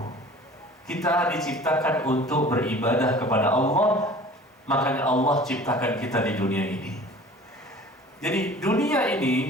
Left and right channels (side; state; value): both; normal; correlation 0.45